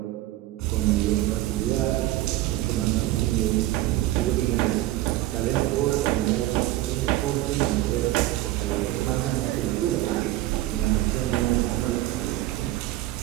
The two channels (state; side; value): quieter; left; 15.9 dB